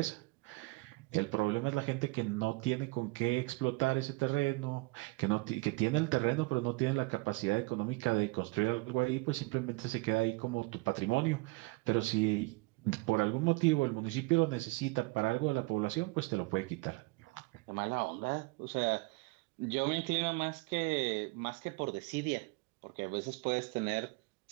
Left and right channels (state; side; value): quieter; left; 24.6 dB